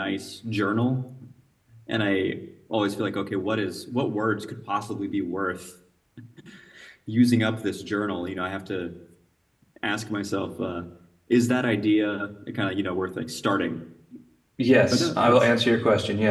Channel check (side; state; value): both; identical; correlation 1.00